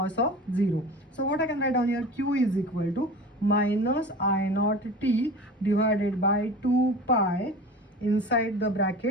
of 0. So what I can write down here, q is equal to minus I naught t divided by 2 pi inside the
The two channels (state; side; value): normal; both; correlation 0.36